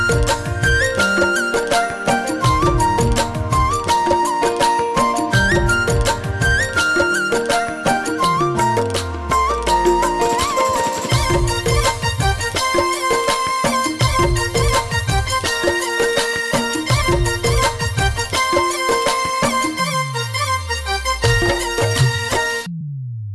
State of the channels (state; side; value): identical; both; correlation 1.00